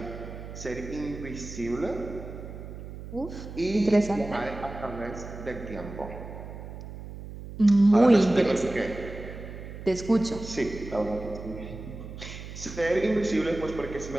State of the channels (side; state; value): right; noise; hum, 11 dB below the sound